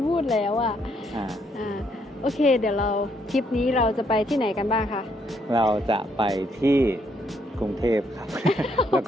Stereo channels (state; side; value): normal; both; correlation 0.72